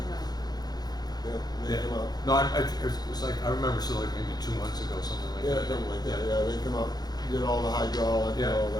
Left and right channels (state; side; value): late; right; 0.19 ms